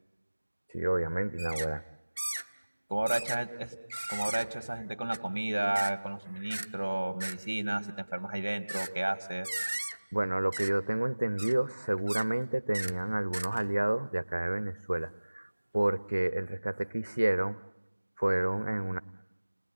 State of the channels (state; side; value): inverted; both; correlation -1.00